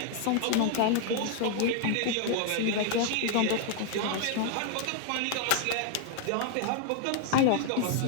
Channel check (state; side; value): different; both; correlation 0.00